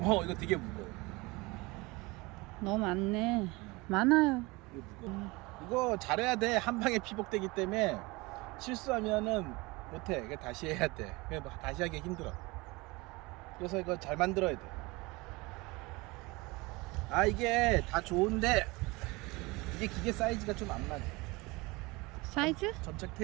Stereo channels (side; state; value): left; quieter; 23.9 dB